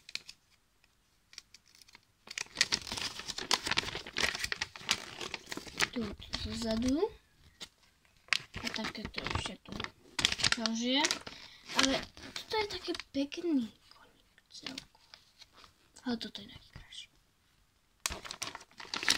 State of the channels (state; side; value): identical; both; correlation 1.00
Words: Tu zozadu. A takéto ešte tu ďalšie. Ale toto je také pekný koník celku. Ale toto je najkrajší.